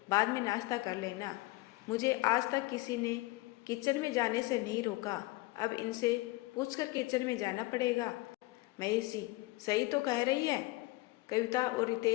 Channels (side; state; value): right; quieter; 21.2 dB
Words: बाद में नाश्ता कर लेना। मुझे आज तक किसी ने किचन में जाने से नहीं रोका, अब इनसे पूछकर किचन में जाना पड़ेगा। महेश जी, सही तो कह रही है। कविता और